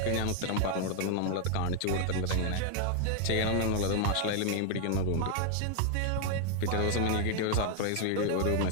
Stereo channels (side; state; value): both; different; correlation 0.00